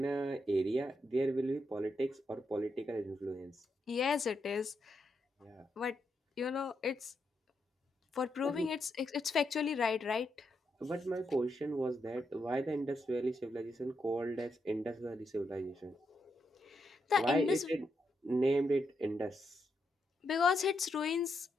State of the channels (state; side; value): normal; both; correlation 0.81